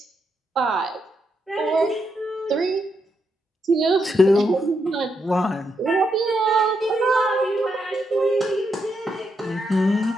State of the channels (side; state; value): both; normal; correlation 0.81